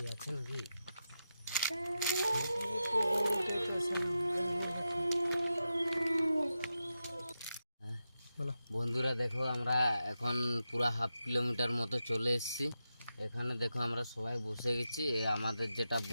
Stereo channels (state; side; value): inverted; both; correlation -0.89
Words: আছে নাকি? বন্ধুরা দেখো, আমরা এখন পুরা হাফ কিলোমিটার মতো চলে এসেছি। এখানে দেখো আমরা সবাই বসে গেছি। আমাদের যেটা